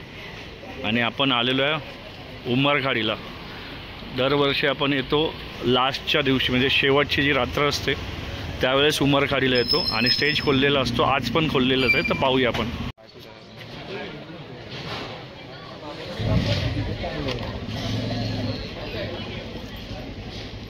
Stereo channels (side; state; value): both; identical; correlation 1.00